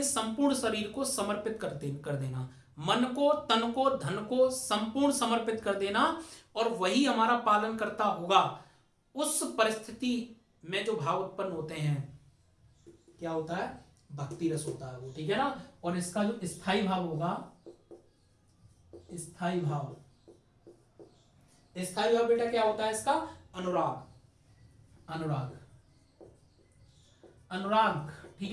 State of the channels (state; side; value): identical; both; correlation 1.00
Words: संपूर्ण शरीर को समर्पित कर देना, मन को, तन को, धन को संपूर्ण समर्पित कर देना, और वही हमारा पालन करता होगा। उस परिस्थिति में जो भाव उत्पन्न होते हैं क्या होता है, भक्ति रस होता है वो। ठीक है ना, और इसका जो स्थायी भाव होगा, स्थायी भाव, स्थायी भाव बेटा क्या होता है इसका, अनुराग, अनुराग, अनुराग।